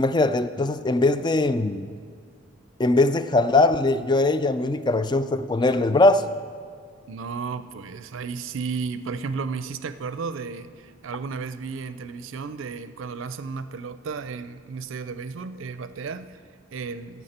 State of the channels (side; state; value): both; normal; correlation 0.51